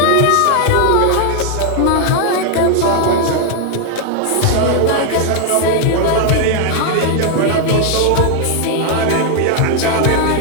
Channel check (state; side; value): different; both; correlation 0.00